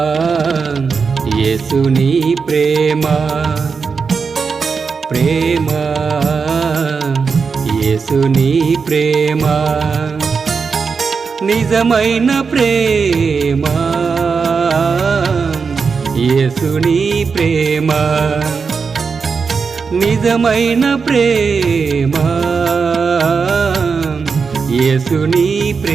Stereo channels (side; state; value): left; quieter; 5.3 dB